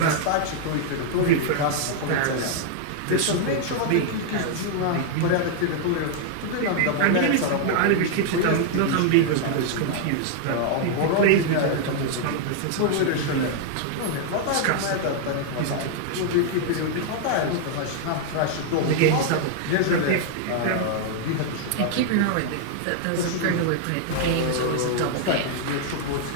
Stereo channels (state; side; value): different; both; correlation 0.00